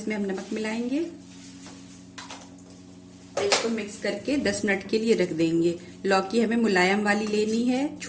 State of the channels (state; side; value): identical; both; correlation 1.00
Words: हम नमक मिलाएंगे और इसको मिक्स करके 10 मिनट के लिए रख देंगे। लौकी हमें मुलायम वाली लेनी है,